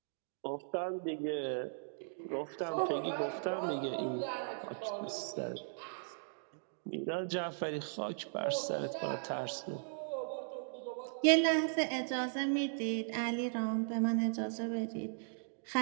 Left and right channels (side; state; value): left; silent; digital silence